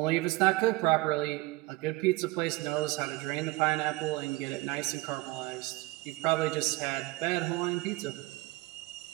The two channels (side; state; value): left; quieter; 21.6 dB